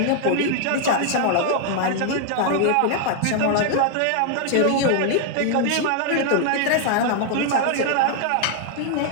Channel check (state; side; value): different; both; correlation 0.00